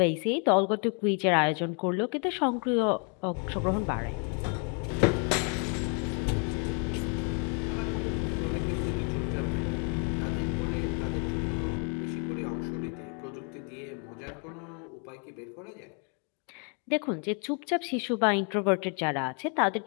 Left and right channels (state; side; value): quieter; right; 38.4 dB